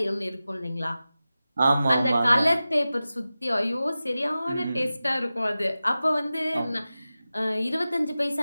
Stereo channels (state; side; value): inverted; both; correlation -0.95